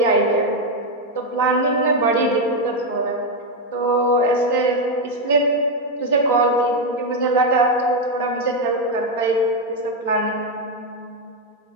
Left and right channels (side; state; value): right; late; 4.3 ms